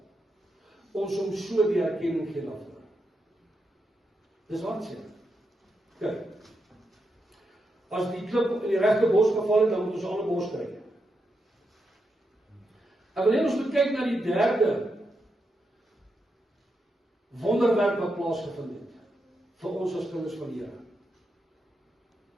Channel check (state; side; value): normal; both; correlation 0.84